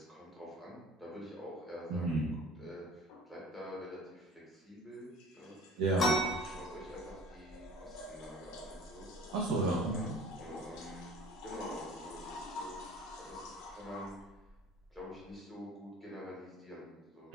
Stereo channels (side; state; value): both; normal; correlation 0.44